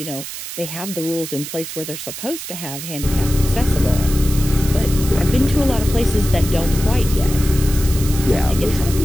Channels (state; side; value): noise; right; hiss, 9 dB below the sound